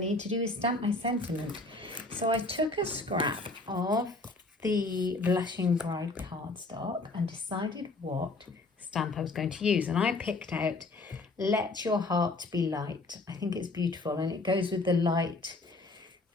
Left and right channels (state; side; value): quieter; right; 3.2 dB